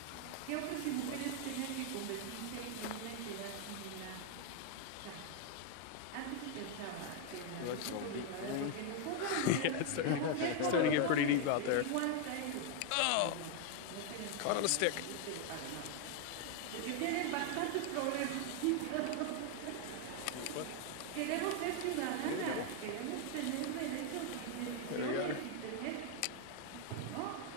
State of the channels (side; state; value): both; different; correlation 0.01